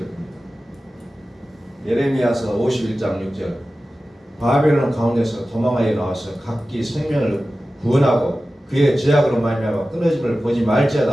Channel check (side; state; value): both; normal; correlation 0.95